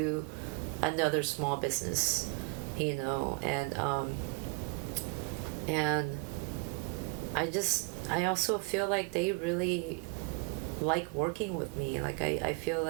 another small business, you know, and I also feel like they really like working with me. Like I feel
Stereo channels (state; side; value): quieter; left; 31.1 dB